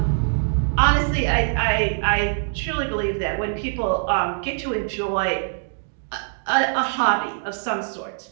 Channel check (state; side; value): silent; left; digital silence